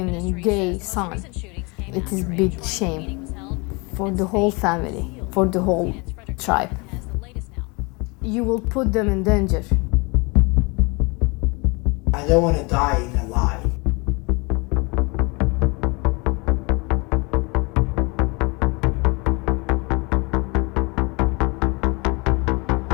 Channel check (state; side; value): quieter; right; 28.4 dB